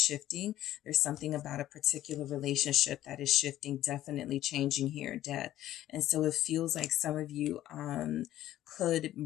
There's something about a particular relationship that is shifting, definitely changing here, death. And so it feels like some of you could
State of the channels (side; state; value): right; quieter; 13.4 dB